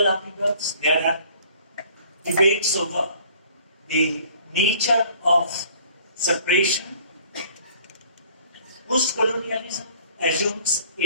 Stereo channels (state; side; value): inverted; both; correlation -0.54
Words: upheavals, there are debates over the nature of separation, post-colonialism assumes